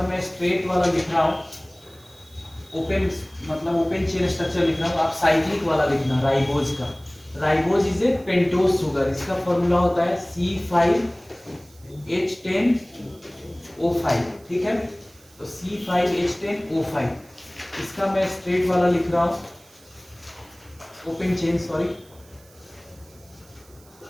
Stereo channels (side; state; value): right; noise; hiss, 27 dB below the sound